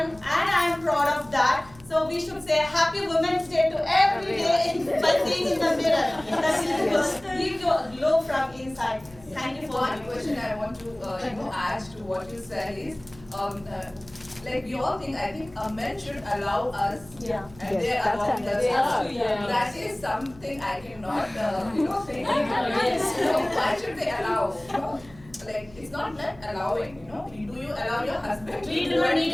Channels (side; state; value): left; noise; hum, 23 dB below the sound